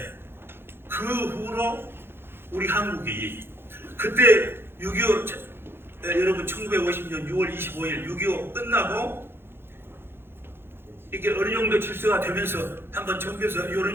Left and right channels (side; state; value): left; late; 0.11 ms